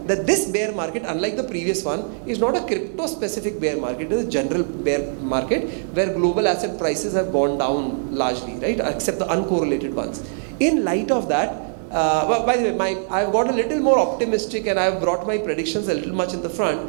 that this bear market, unlike the previous one, is not a crypto specific bear market. It is a general bear market where global asset prices have gone down largely, right? Except the uncorrelated ones. In light of that, by the way, I've got a little more optimistic and I've brought my predictions a little much in the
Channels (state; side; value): silent; left; 64 dB below the other